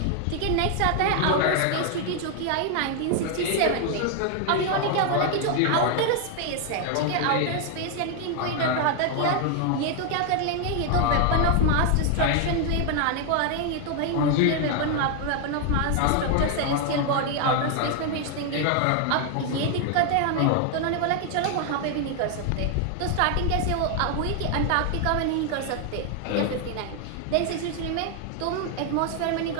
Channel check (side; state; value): both; different; correlation 0.00